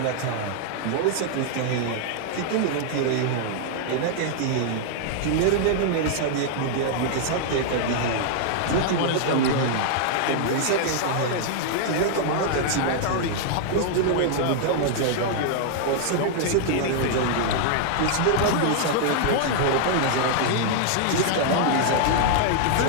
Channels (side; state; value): both; different; correlation -0.01